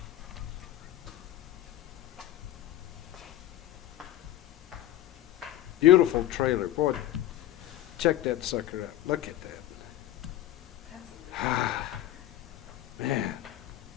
Beautiful trailer. Boy, check that sucker out. Look at that. Man.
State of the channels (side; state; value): right; quieter; 13.7 dB